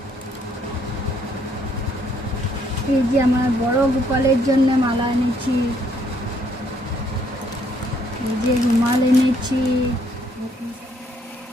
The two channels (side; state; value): both; normal; correlation 0.68